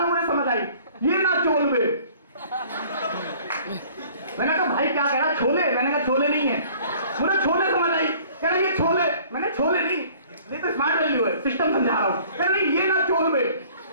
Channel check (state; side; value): inverted; both; correlation -0.53